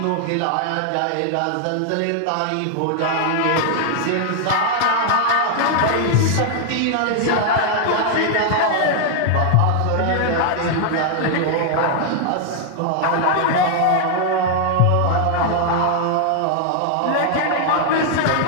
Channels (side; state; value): both; different; correlation 0.00